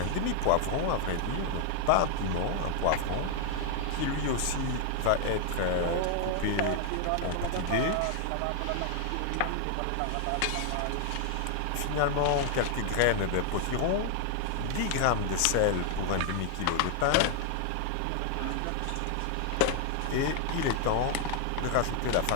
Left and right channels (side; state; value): both; different; correlation 0.00